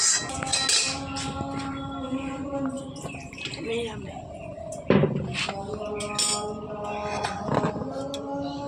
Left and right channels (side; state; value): both; identical; correlation 1.00